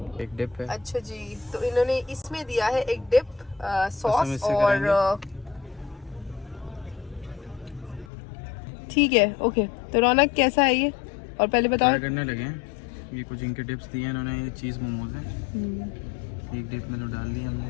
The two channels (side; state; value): right; drops out; at 8.1 s